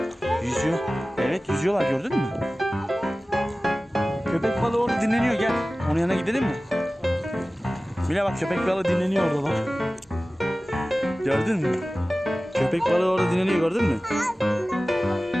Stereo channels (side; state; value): both; normal; correlation 0.97